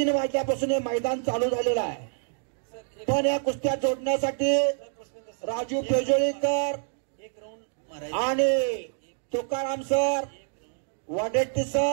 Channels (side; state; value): left; silent; digital silence